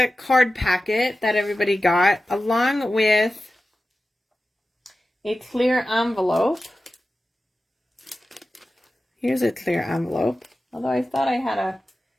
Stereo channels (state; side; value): normal; both; correlation 0.94